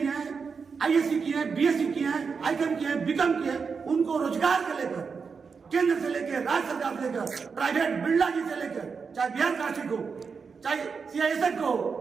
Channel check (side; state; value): left; quieter; 5.5 dB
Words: हैं, आईएससी किए हैं, बीएससी किए हैं, आईकॉम किए हैं, बीकॉम किए हैं, उनको रोजगार के लेकर केंद्र से लेकर राज्य सरकार से लेकर प्राइवेट बिरला जी से लेकर चाहे बिहार काशी को, चाहे सीआईएसएफ को,